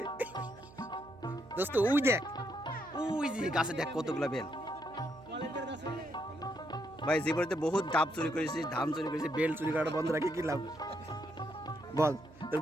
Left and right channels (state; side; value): noise; right; hum, 21 dB below the sound